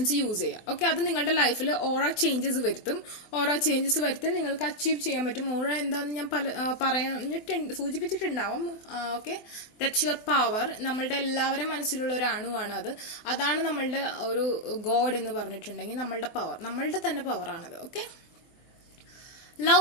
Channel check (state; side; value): late; right; 24 ms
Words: യൂസ് ചെയ്യുക. ഓക്കെ, അത് നിങ്ങളുടെ ലൈഫിൽ ഓറ ചേഞ്ചസ് വരുത്തും. ഓറ ചേഞ്ചസ് വരുത്താൻ നിങ്ങൾക്ക് അച്ചീവ് ചെയ്യാൻ പറ്റും. ഓറ എന്താണെന്ന് ഞാൻ സൂചിപ്പിച്ചിട്ടുണ്ടാവും. Okay, that's your power. നമ്മളുടെ എല്ലാവരും മനസ്സിലുള്ള ഒരു അണുവാണ് അത്. അതാണ് നമ്മളുടെ ഒരു ഗോഡ് എന്ന് പറഞ്ഞിട്ടുണ്ടെങ്കിൽ നമ്മളുടെ പവർ, നമ്മളുടെ തന്നെ പവറാണത്. Okay,